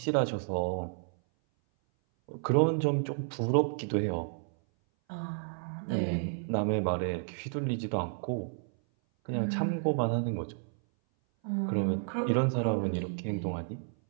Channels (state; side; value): silent; left; 57 dB below the other